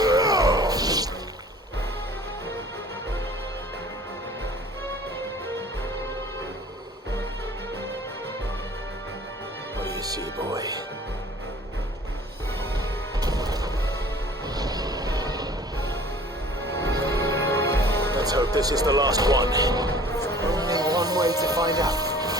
What do you see, boy? Let's hope this is the last one. Only one way to find out.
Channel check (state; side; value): normal; both; correlation 0.49